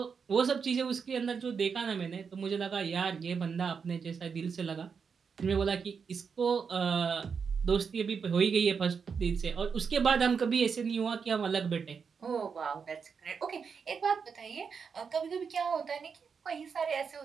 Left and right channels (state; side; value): quieter; left; 6.0 dB